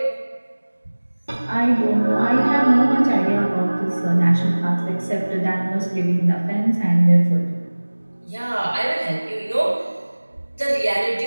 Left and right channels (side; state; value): both; inverted; correlation -1.00